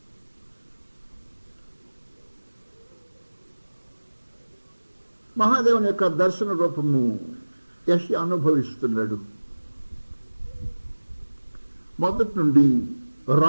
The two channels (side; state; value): both; inverted; correlation -1.00